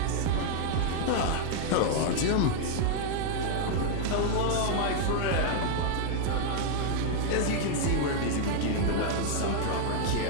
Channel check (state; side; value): different; both; correlation 0.00